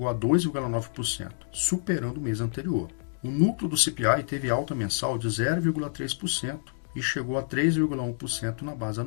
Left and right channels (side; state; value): right; silent; digital silence